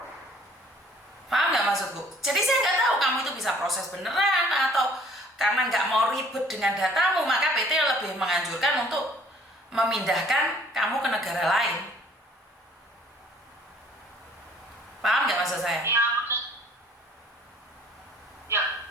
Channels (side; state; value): both; normal; correlation 0.56